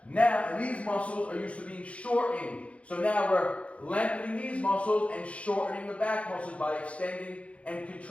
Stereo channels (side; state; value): right; late; 0.063 ms